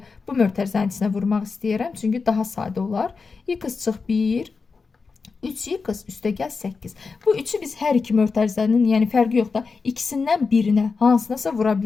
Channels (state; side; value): quieter; right; 4.7 dB